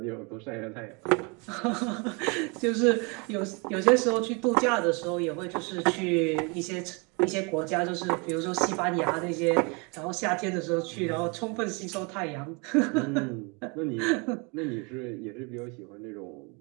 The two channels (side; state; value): left; quieter; 31.1 dB